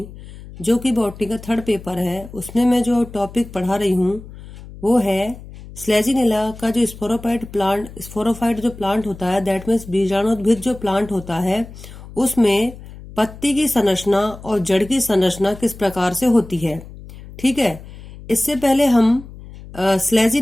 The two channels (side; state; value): left; noise; hum, 16 dB below the sound